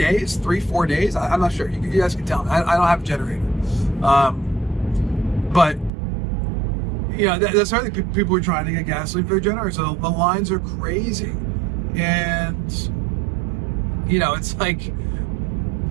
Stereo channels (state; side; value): drops out; left; at 5.9 s